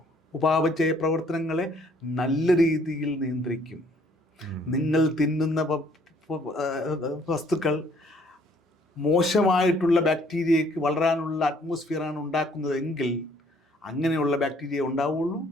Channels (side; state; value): both; normal; correlation 0.62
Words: ഉപാപചയ പ്രവർത്തനങ്ങളെ നല്ല രീതിയിൽ നിയന്ത്രിക്കും. നിങ്ങൾ തിന്നുന്ന വസ്തുക്കൾ മോശമായിട്ടുള്ള ബാക്ടീരിയയ്ക്ക് വളരാനുള്ള അറ്റ്മോസ്ഫിയറാണ് ഉണ്ടാക്കുന്നതെങ്കിൽ അങ്ങനെയുള്ള ബാക്ടീരിയ ഉണ്ടാവുള്ളൂ,